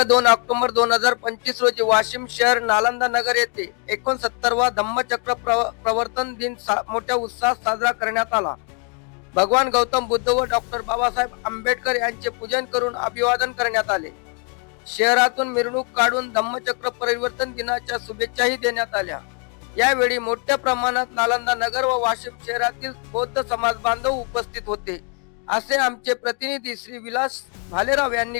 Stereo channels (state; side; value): quieter; right; 38.6 dB